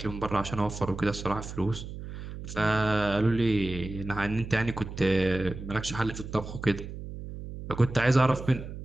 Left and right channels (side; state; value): right; noise; hum, 10 dB below the sound